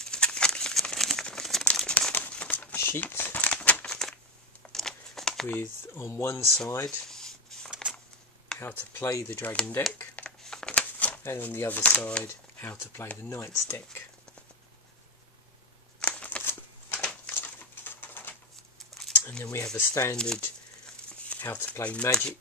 sheet, with on one side how to play the Dragon deck, and on the other side how to play the Knights deck. And then we have a standard how to play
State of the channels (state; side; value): normal; both; correlation 0.10